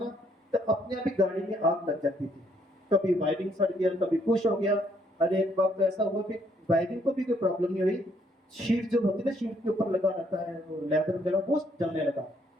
तो अपने आप ही गाड़ी में आग लग जाती थी। कभी वायरिंग सड़ गया, कभी कुछ हो गया। अरे एक बार तो ऐसा हुआ कि वायरिंग को भी कोई प्रॉब्लम नहीं हुई, शीट जो होती है ना, शीट के ऊपर लगा रहता है वो लेदर वगैरह, वो जलने लगा।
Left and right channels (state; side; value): normal; both; correlation 0.69